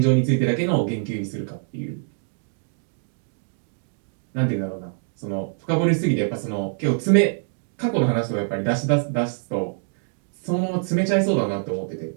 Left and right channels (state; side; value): silent; left; digital silence